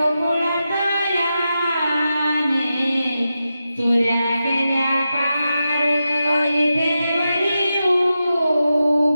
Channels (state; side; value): inverted; both; correlation -0.89